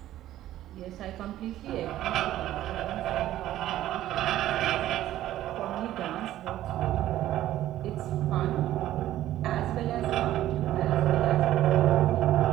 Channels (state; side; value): quieter; left; 13.6 dB